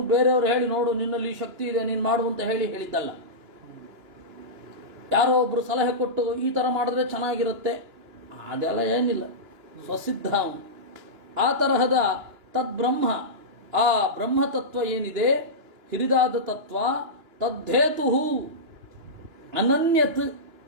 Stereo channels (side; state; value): left; late; 2.9 ms